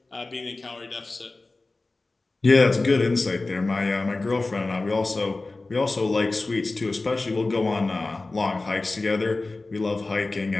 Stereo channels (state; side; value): quieter; right; 3.3 dB